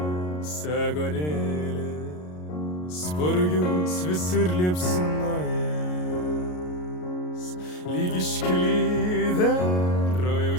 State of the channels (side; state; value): right; late; 33 ms